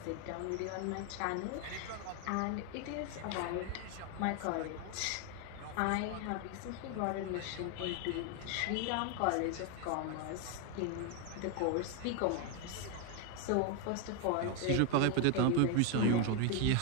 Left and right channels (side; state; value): both; different; correlation 0.01